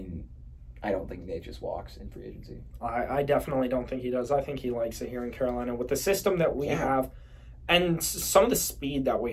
I don't think Nate just walks in free agency. I definitely don't think he does. I think he likes it here in Carolina with the system that we have and some of the speed that we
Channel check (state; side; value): identical; both; correlation 1.00